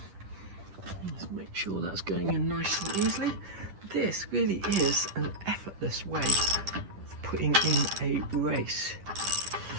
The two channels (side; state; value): left; late; 10 ms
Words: let's make sure that's going in nice and easily. This really is an effortless way of putting in a race.